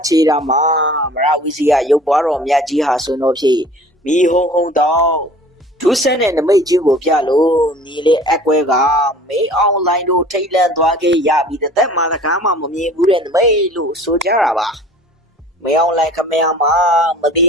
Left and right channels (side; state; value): both; normal; correlation 0.47